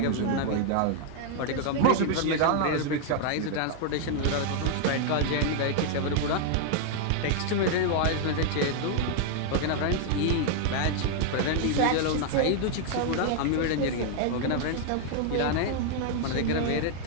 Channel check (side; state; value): both; different; correlation 0.00